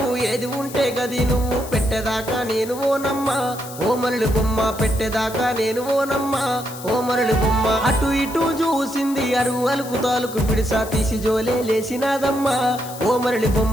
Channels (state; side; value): noise; left; hiss, 14 dB below the sound